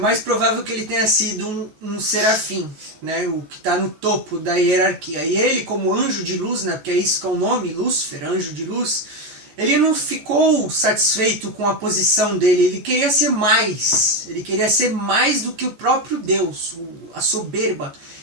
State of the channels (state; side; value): late; left; 14 ms